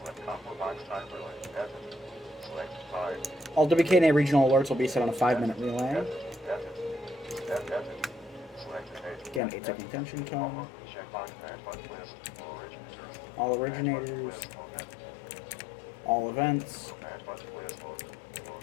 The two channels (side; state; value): right; drops out; at 9.4 s